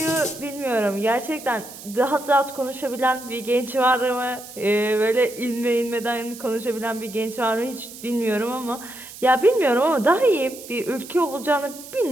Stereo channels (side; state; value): right; noise; hiss, 15 dB below the sound